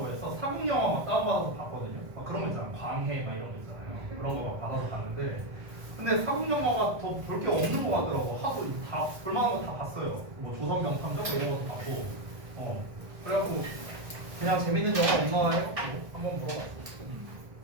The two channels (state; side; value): late; left; 1.5 ms